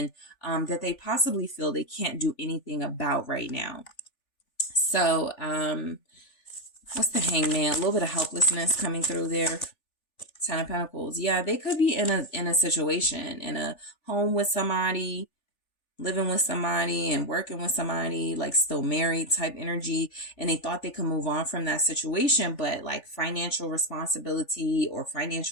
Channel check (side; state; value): right; late; 3.4 ms